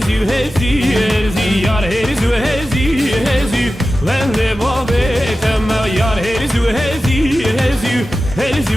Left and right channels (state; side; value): normal; both; correlation 0.94